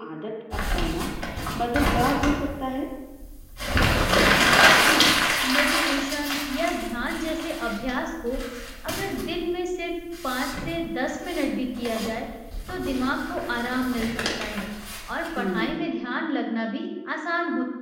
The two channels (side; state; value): both; identical; correlation 1.00